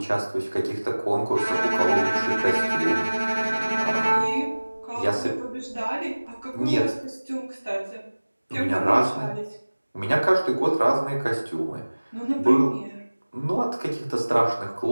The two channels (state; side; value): inverted; both; correlation -1.00